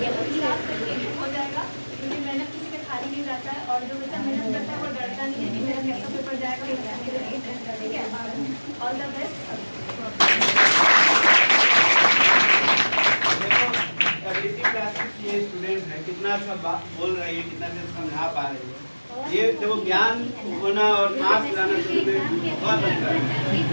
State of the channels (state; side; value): inverted; both; correlation -1.00